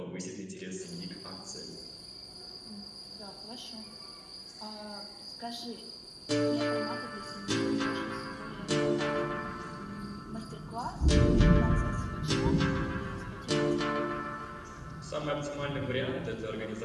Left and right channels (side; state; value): both; identical; correlation 1.00